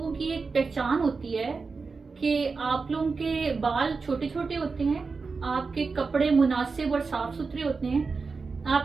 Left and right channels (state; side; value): quieter; left; 4.5 dB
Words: की एक पहचान होती है कि आप लोगों के बाल छोटे छोटे होते हैं, आपके कपड़े मुनासिब और साफ सुथरे होते हैं,